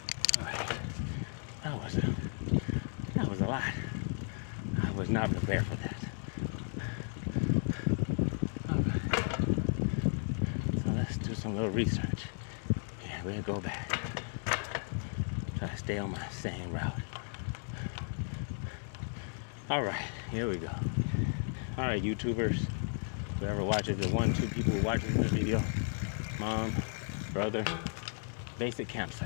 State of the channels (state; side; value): silent; right; 55 dB below the other